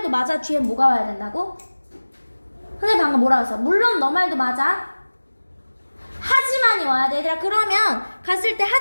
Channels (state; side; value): inverted; both; correlation -1.00